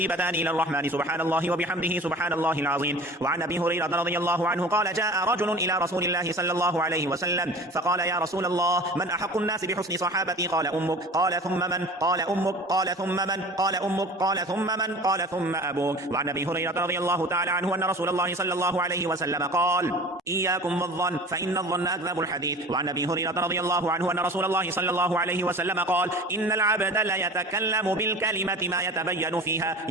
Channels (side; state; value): both; normal; correlation 0.40